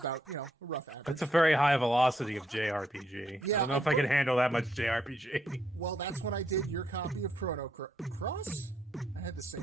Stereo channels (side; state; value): both; normal; correlation 0.75